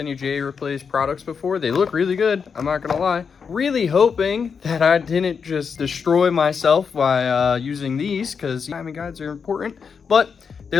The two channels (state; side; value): quieter; right; 6.1 dB